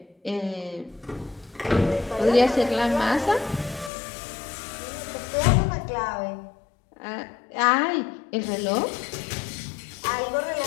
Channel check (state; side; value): drops out; right; at 3.9 s